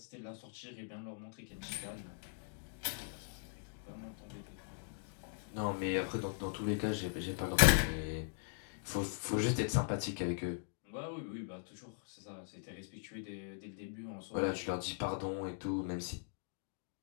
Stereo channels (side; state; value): right; silent; digital silence